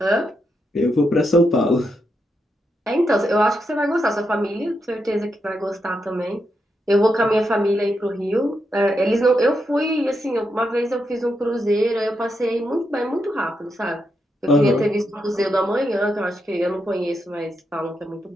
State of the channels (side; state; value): both; normal; correlation 0.83